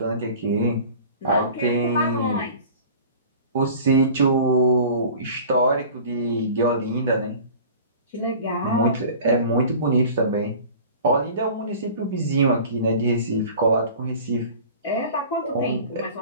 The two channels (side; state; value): both; inverted; correlation -0.42